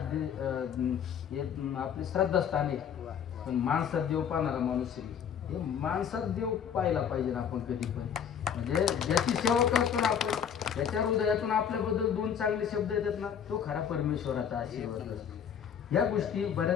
हे आपले श्रद्धास्थान आहे. पण माणसात देव पाहणारा माणूस आहे. हे माणसात देव पाहायला पाहिजे ना आपण कधी पण. म्हणजे ज्याची सेवा करतो ना आपण, त्याच्या हृदयातून आपल्याबद्दल 2 चांगले शब्द येतात ना, तो खरा परमेश्वराचा आशीर्वाद असतो. या गोष्टी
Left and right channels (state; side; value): quieter; right; 8.1 dB